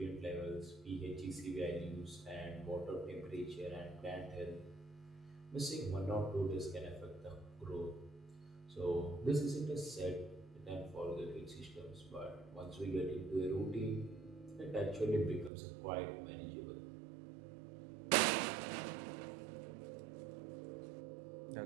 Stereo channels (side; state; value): left; drops out; at 15.5 s